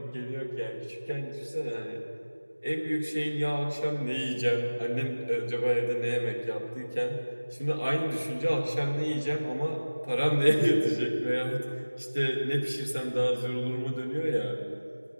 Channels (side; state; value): both; inverted; correlation -1.00